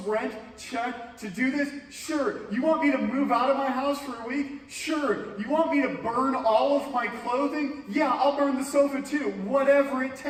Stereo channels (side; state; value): both; identical; correlation 1.00